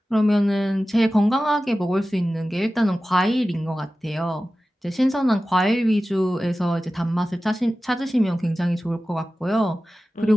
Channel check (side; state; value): both; normal; correlation 0.95